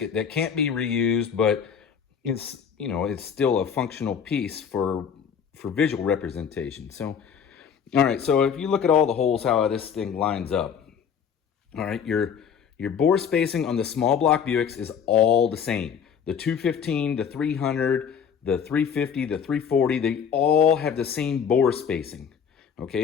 that can't be reused, but it's, you know, it's still a functional piece for visual representation. So, all right. So if you look at all the holes, how this thing lines up. All right, your bore spacing on the small block Buicks is all the same. The 215, the 300, the 350, the 340, they all have the same bore spacing,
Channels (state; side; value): quieter; right; 7.4 dB